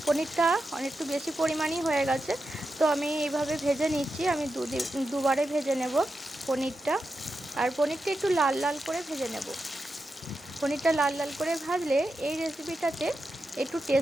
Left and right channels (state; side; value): normal; both; correlation 0.89